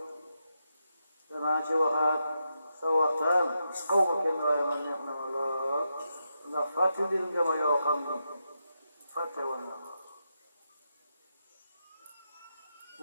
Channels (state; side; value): inverted; both; correlation -0.85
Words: danaa ci waxaat sa waxtaan xaw ma kenn waaye man neex na ma lool ndax fàttali nga ma yoo xam ni fàtte woon na